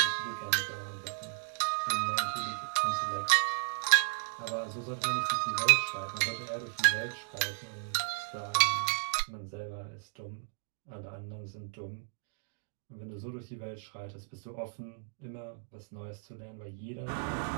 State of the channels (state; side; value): silent; left; digital silence